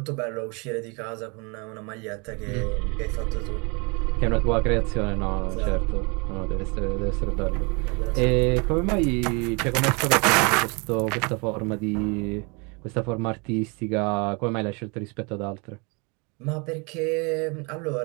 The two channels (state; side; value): quieter; left; 31.2 dB